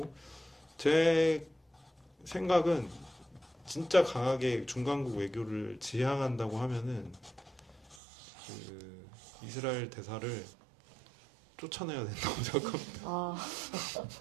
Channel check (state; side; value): drops out; left; at 8.0 s